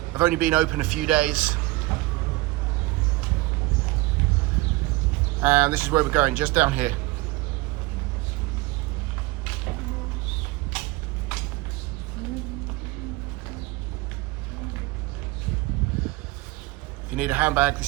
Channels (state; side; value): quieter; left; 20.7 dB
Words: have only been open a few days. And this is where we're going, just down here. If you need a handbag,